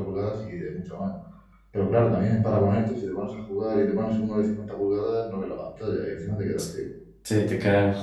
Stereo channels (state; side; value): identical; both; correlation 1.00